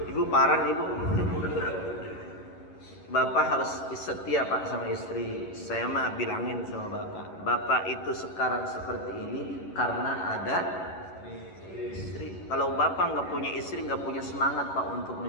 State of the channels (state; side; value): late; right; 11 ms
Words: Ibu parah nih Bu. Bapak harus setia Pak sama istri. Saya mah bilangin sama Bapak, Bapak itu sekarang seperti ini karena ada istri. Kalau Bapak nggak punya istri, nggak punya semangat Pak untuk